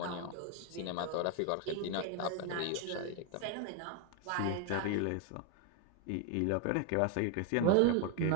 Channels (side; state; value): both; different; correlation 0.01